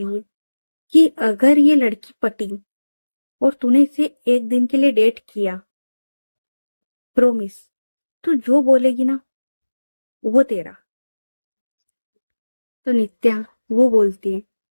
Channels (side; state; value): both; inverted; correlation -1.00